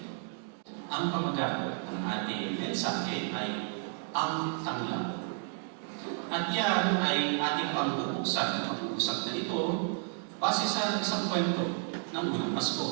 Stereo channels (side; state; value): left; silent; 56 dB below the other